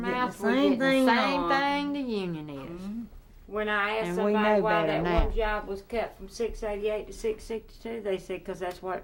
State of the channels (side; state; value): both; identical; correlation 1.00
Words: getting the we're same getting the thing same on. thing the union is. Mhm. When I asked And we somebody know why better that now. one job was cut from 688 to 662, they said because that's what